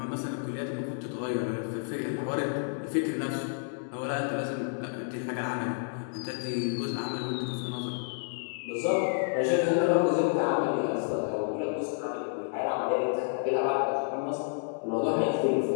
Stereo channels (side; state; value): right; silent; digital silence